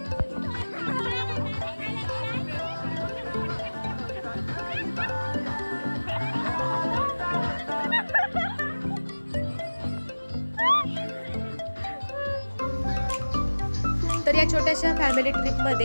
तर या छोट्याशा फॅमिली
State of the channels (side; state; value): both; inverted; correlation -1.00